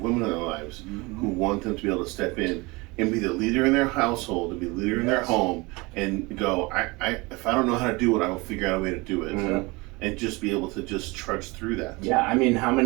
in their lives who want them to be able to step in and be the leader in their household, and be the leader in their home, and go, if I don't know how to do it, I will figure out a way to do it, and just be able to just trudge through that. Yeah, I mean, how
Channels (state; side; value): quieter; left; 24.8 dB